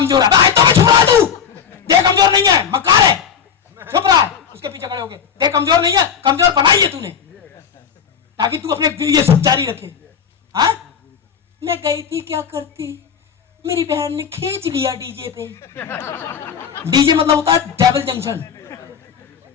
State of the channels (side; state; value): right; quieter; 7.5 dB